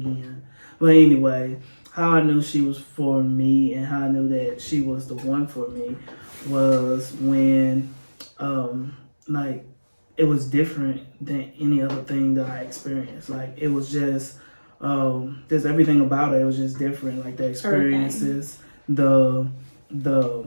But anyway, how I knew she was for me and how I knew that she was the one for me was when, like, it was different than any other thing that I experienced. Like, it was just everything about it. It was just different. Like, the experiences, the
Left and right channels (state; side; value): inverted; both; correlation -1.00